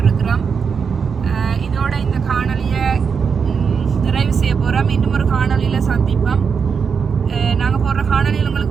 இதோட இந்த காணொலியை நிறைவு செய்ய போகிறோம் இன்னும் ஒரு காணொலியில் சந்திப்போம் நாங்கள் போடுற காணொலியில்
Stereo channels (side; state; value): left; quieter; 6.1 dB